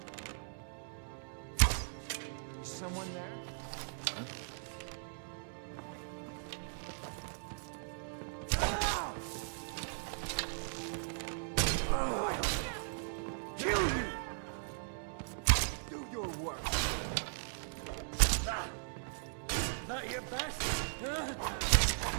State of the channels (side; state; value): left; silent; digital silence